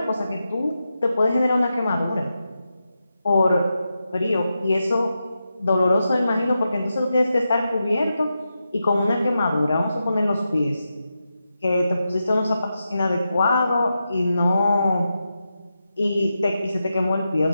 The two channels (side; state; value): both; inverted; correlation -0.89